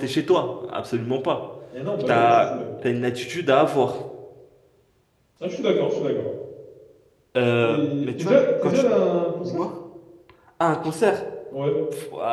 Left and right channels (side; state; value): both; identical; correlation 1.00